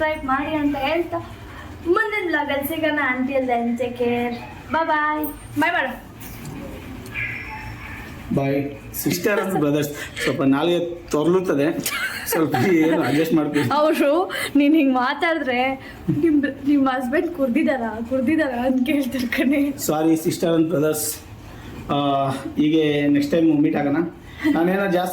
ಮಾಡಿ ಅಂತ ಹೇಳ್ತಾ ಮುಂದಿನ ವ್ಲಾಗಲ್ಲಿ ಸಿಗೋಣ. ಅಂಟಿಲ್ ದೆನ್ ಟೇಕ್ ಕೇರ್, ಬಾಯ್ ಬಾಯ್. ಬಾಯ್ ಮಾಡು. ಬಾಯ್. ಸಿಸ್ಟರ್ ಅಂಡ್ ಬ್ರದರ್ಸ್ ಸ್ವಲ್ಪ ನಾಲ್ಗೆ ತೊರ್ಲುತ್ತದೆ, ಸ್ವಲ್ಪ ಏನು ಅಡ್ಜಸ್ಟ್ ಮಾಡ್ತೀವಿ. ಅವರು ನೀನು ಹಿಂಗೆ ಮಾತಾಡಿದ್ರೆ ನಿಮ್ಮ ಹಸ್ಬೆಂಡ್ ಕುಡ್ದಿದಾರ ಅಂತ ಕೇಳ್ತಾರೆ ಕಣೆ. Sorry sister and brothers. ಹೀಗೆ ನೆಕ್ಸ್ಟ್ ಟೈಮ್ ಮೀಟ್ ಆಗೋಣ. ನಾನೇನೋ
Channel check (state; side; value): identical; both; correlation 1.00